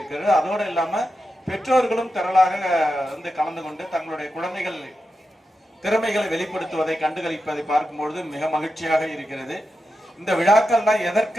அதோடு இல்லாம பெற்றோர்களும் திரளாக வந்து கலந்து கொண்டு தங்களுடைய குழந்தைகள் திறமைகளை வெளிப்படுத்துவதை கண்டுகளிப்பதை பார்க்கும்பொழுது மிக மகிழ்ச்சியாக இருக்கிறது. இந்த விழாக்கள்லாம்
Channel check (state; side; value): normal; both; correlation 0.89